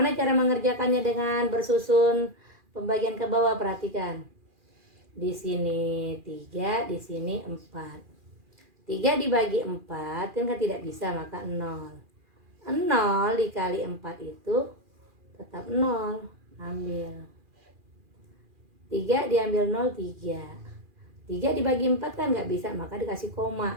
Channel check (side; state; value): left; late; 2.4 ms